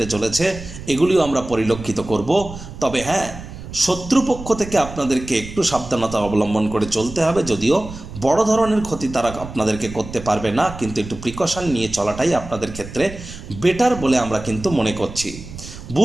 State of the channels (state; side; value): noise; right; rumble, 12 dB below the sound